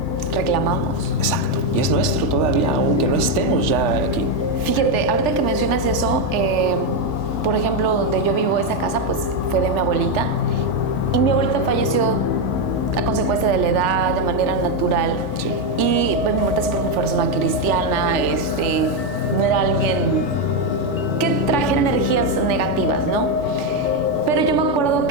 reclamamos. Exacto, y es nuestro todavía, aunque no estemos ya aquí. Fíjate, ahorita que mencionas eso... por ejemplo, donde yo vivo, esa casa, pues fue de mi abuelita. Y mi abuelita falleció a consecuencia de la edad, de manera natural. Sí. Y pues, mi abuelita siempre fue una persona cristiana, no era alguien que trajera energías negativas, ¿no? Pero yo me acuerdo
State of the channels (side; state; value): left; late; 3.4 ms